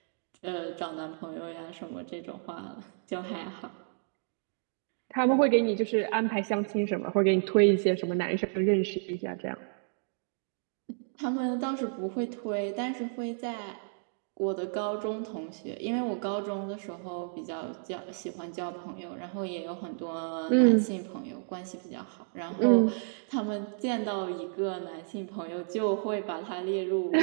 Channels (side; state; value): left; silent; digital silence